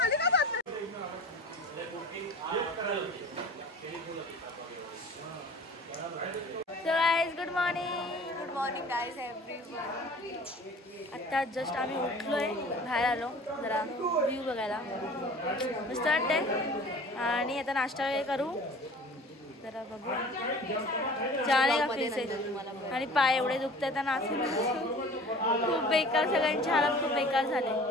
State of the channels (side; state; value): both; normal; correlation 0.44